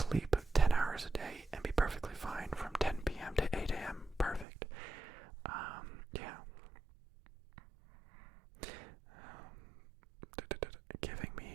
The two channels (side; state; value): left; drops out; at 4.5 s